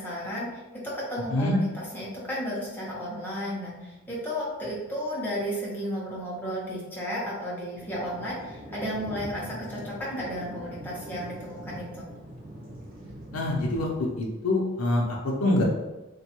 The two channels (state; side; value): normal; both; correlation 0.49